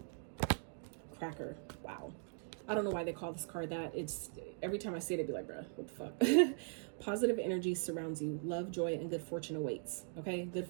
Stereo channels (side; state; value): left; silent; 51 dB below the other